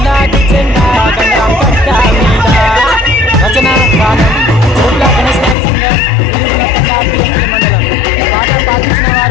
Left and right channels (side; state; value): right; drops out; at 5.6 s